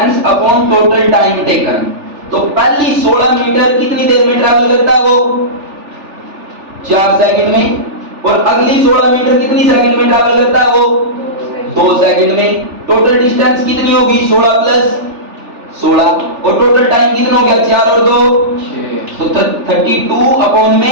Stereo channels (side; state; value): left; late; 3.4 ms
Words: upon total time taken. तो पहली 16 मीटर कितनी देर में ट्रैवल करता है वो, 4 सेकंड में, और अगली 16 मीटर कितनी सेकंड में ट्रैवल करता है वो, 2 सेकंड में। टोटल डिस्टेंस कितनी होगी, 16 प्लस 16, और टोटल टाइम कितना हो गया, 4 और 2 तो 32 अपॉन